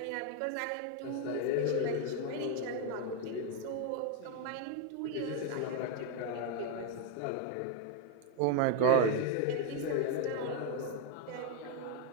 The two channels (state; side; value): different; both; correlation 0.01